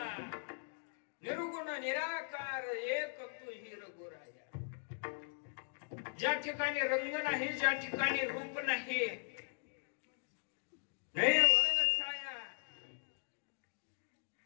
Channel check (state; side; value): silent; right; digital silence